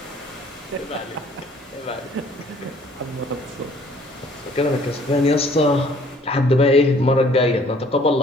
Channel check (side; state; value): both; normal; correlation 0.58